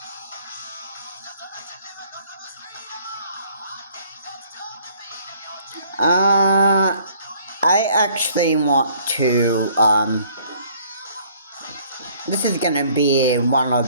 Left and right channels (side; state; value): both; inverted; correlation -0.59